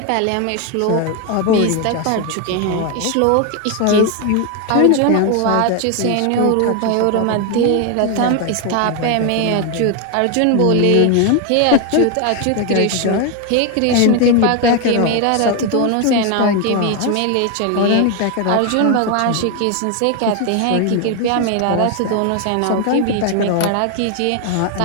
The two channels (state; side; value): different; both; correlation 0.01